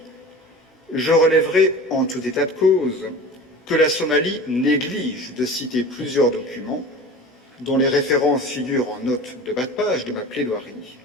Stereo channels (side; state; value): both; normal; correlation 0.37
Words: je relèverai en tout état de cause que la Somalie néglige de citer plusieurs documents dont les références figurent en note de bas de page de ma plaidoirie,